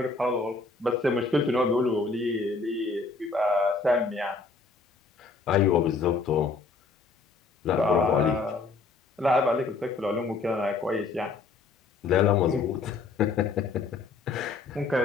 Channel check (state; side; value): quieter; right; 4.1 dB